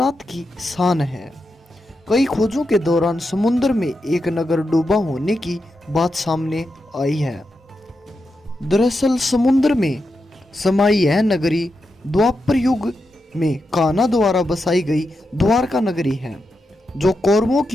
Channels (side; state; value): both; normal; correlation 0.87